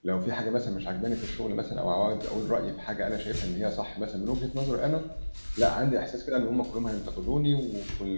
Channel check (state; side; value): inverted; both; correlation -1.00